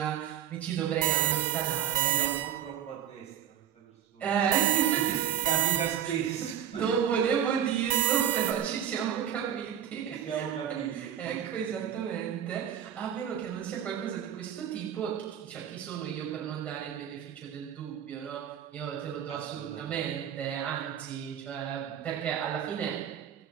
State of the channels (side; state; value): left; quieter; 9.8 dB